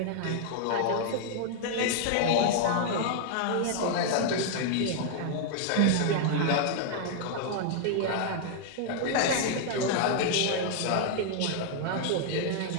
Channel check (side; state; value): both; different; correlation 0.00